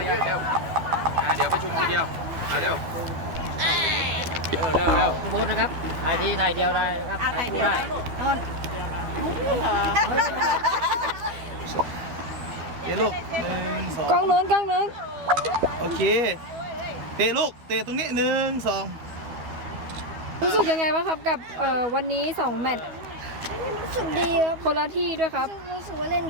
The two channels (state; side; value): late; left; 12 ms